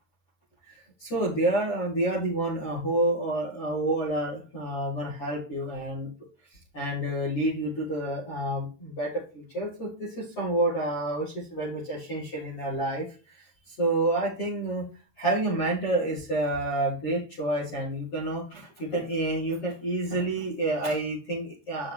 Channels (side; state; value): right; late; 13 ms